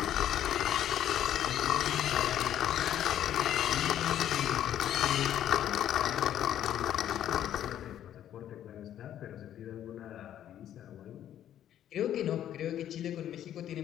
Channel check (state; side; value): quieter; right; 11.0 dB